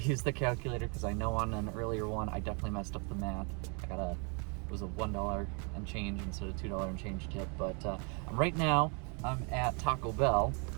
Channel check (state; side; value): quieter; left; 35.8 dB